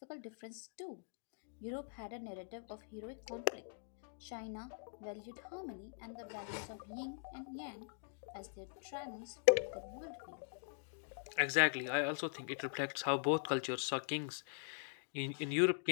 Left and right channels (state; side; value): silent; right; digital silence